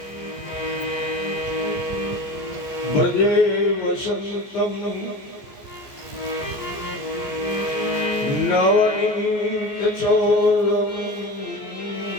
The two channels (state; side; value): late; right; 14 ms